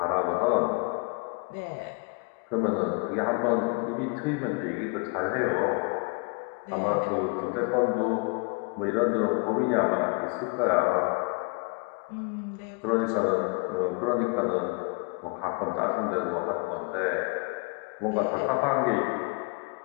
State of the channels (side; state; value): right; quieter; 32.4 dB